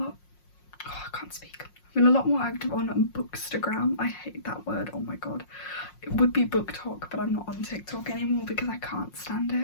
can't speak. I've been a lot more active on Bookstagram. I hate that word, oh my god. It would be BookTok, but I'm not on TikTok anymore because I can't stand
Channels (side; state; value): right; late; 5.5 ms